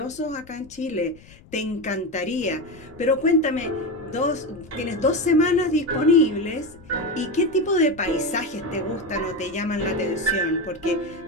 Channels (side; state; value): left; noise; rumble, 23 dB below the sound